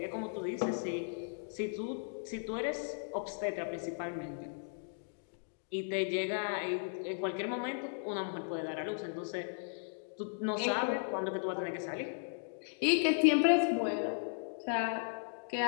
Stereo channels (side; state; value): right; silent; digital silence